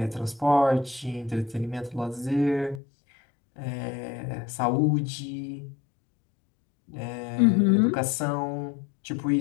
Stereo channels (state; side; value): drops out; right; at 2.8 s